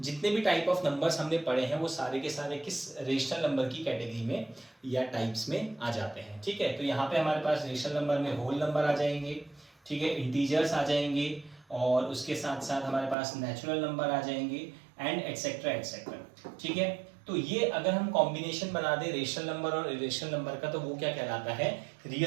जितने भी टाइप ऑफ नंबर्स हमने पढ़े हैं वो सारे के सारे किस रेशनल नंबर की कैटेगरी में या टाइप्स में आ जाते हैं। ठीक है, तो यहाँ पे हमारे पास रेशनल नंबर में होल नंबर आ जाएंगे, ठीक है, इंटीजर्स आ जाएंगे, और उसके साथ साथ हमारे पास नेचुरल नंबर आ जाएंगे एंड एक्सेट्रा एक्सेट्रा। ठीक है, तो ये अगर हम कॉम्बिनेशन बना दें रेशनल नंबर और इरेशनल नंबर का, तो वो क्या कहलाता है,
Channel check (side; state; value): left; drops out; at 13.2 s